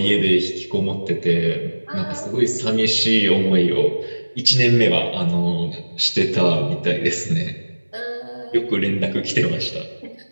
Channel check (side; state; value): both; inverted; correlation -1.00